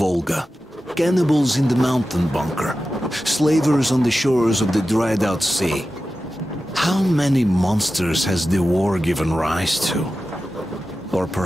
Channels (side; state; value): both; normal; correlation 0.93